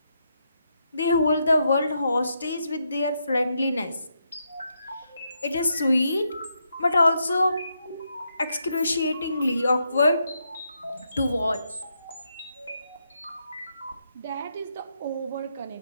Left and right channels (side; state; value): both; inverted; correlation -0.80